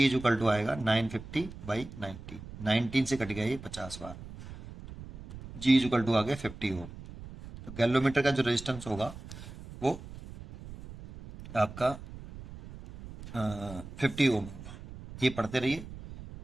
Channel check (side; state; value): right; noise; rumble, 14 dB below the sound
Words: इज इक्वल टू आएगा 950/90, 19 से कट गया ये 50 बार, जी इज इक्वल टू आ गया 50 ओम। तो गैलोमीटर का जो रेजिस्टेंस होगा वो आपका 50 ओम होगा। ये पढ़ते रहिए,